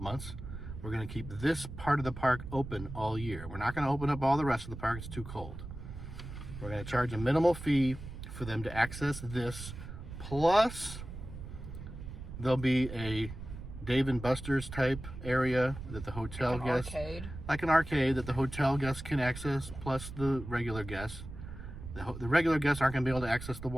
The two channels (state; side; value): noise; right; rumble, 10 dB below the sound